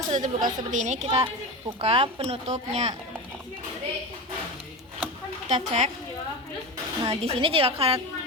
sudah terbuka seperti ini, kita buka penutupnya. Kita cek. Nah, di sini jika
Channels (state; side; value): normal; both; correlation 0.24